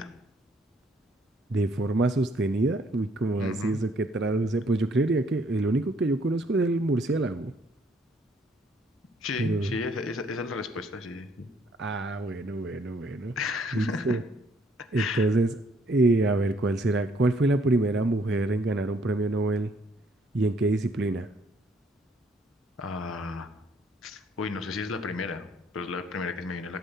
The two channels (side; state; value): both; normal; correlation 0.65